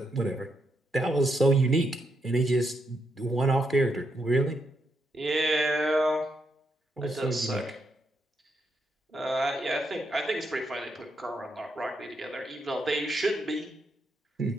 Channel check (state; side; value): normal; both; correlation 0.80